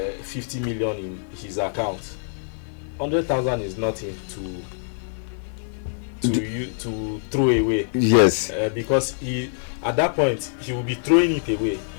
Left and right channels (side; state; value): right; silent; 62 dB below the other